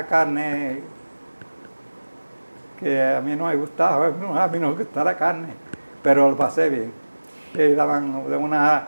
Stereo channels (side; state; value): both; inverted; correlation -1.00